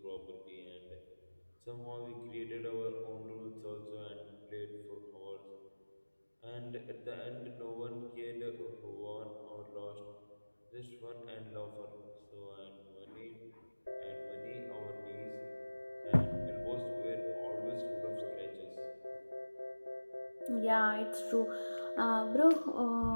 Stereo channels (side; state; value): both; inverted; correlation -1.00